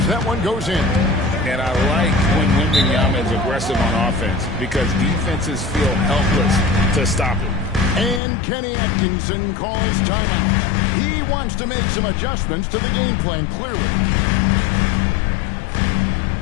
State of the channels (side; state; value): right; drops out; at 8.2 s